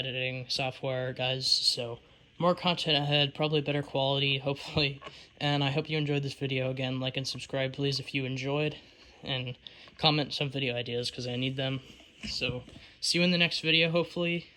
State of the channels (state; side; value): identical; both; correlation 1.00